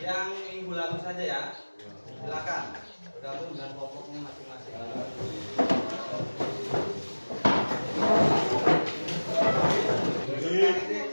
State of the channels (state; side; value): inverted; both; correlation -1.00